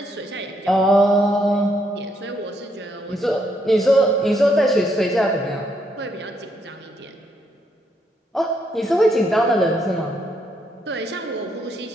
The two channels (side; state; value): both; normal; correlation 0.75